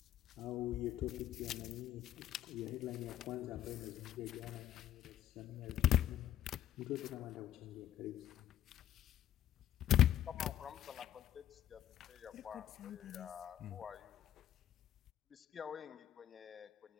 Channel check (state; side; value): quieter; right; 11.7 dB